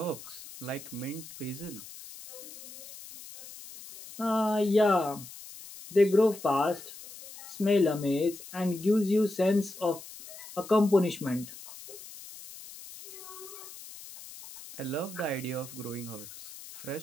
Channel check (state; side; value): noise; left; hiss, 15 dB below the sound